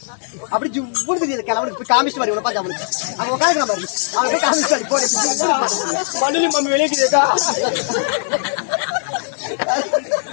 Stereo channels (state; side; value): silent; right; 67 dB below the other